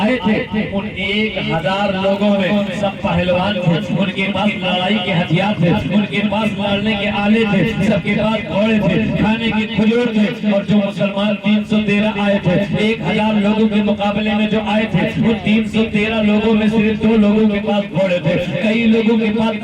تھے ان 1000 لوگوں میں سب پہلوان تھے، ان کے پاس لڑائی کے ہتھیار تھے، ان کے پاس لڑنے کے آلے تھے، سب کے پاس گھوڑے تھے، کھانے کے کھجور تھے۔ اور جو مسلمان 313 آئے تھے 1000 لوگوں کے مقابلے میں جو آئے تھے وہ 313 لوگوں میں صرف 2 لوگوں کے پاس گھوڑے تھے، کئی لوگوں کے پاس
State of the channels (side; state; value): both; identical; correlation 1.00